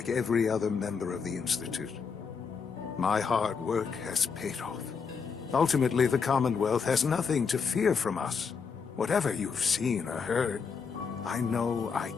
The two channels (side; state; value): right; quieter; 5.7 dB